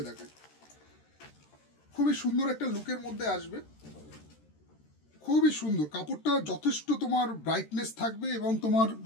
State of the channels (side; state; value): right; late; 13 ms